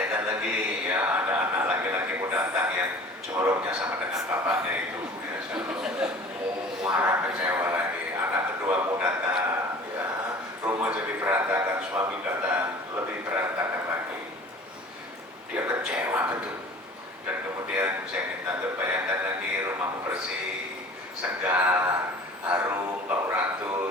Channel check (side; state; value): both; normal; correlation 0.44